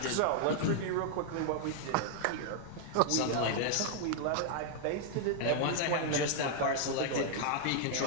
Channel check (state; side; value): different; both; correlation 0.00